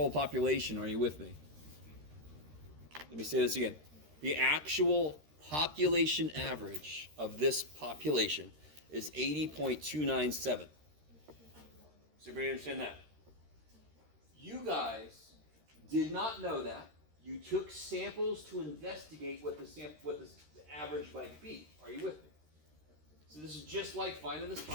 population. Are you with me? Let me say this again. The actual population average of this population is 80.297. Does everybody understand that? You guys did not know that. You took samples to investigate what the average might be. Are you with me? So this is just like finding the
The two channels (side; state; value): left; late; 13 ms